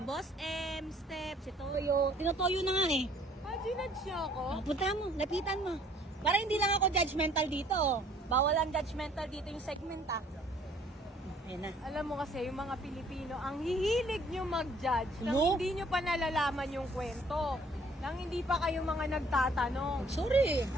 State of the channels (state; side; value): normal; both; correlation 0.59